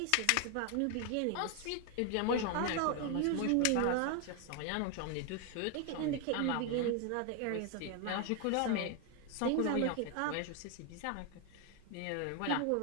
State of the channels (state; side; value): different; both; correlation 0.01